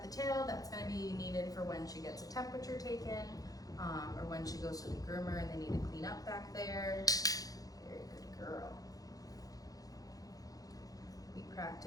the tail, that's going to be needed for when she gets a temperature taken or when she goes to the groomer and they need to clean up back there. Very good girl. We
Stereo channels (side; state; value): right; late; 0.18 ms